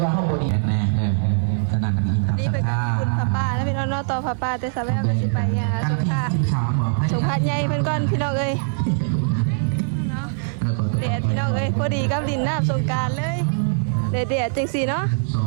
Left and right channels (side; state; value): left; silent; 64 dB below the other